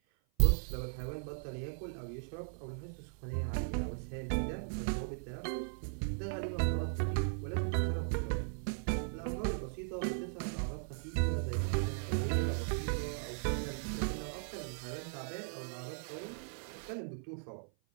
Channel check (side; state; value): left; silent; 53 dB below the other